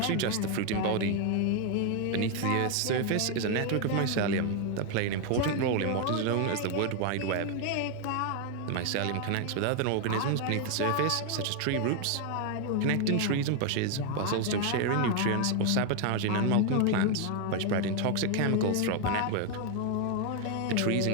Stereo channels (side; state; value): both; different; correlation 0.01